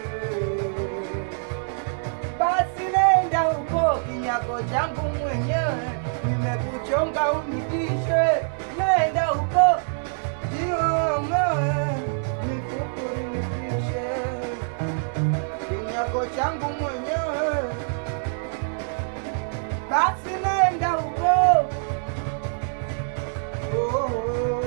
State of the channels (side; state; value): left; silent; 62 dB below the other